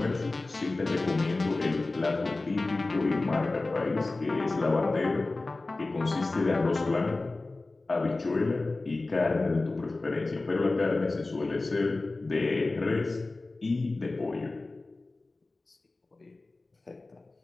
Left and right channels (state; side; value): quieter; right; 3.2 dB